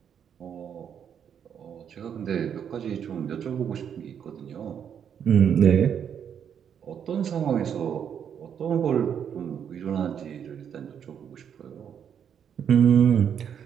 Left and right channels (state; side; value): quieter; left; 8.3 dB